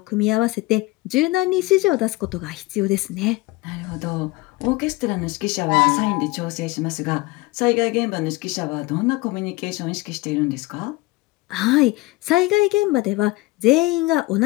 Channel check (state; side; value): quieter; right; 21.4 dB